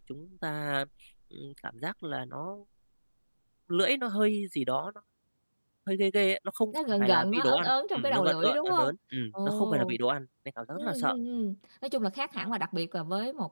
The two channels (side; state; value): both; inverted; correlation -1.00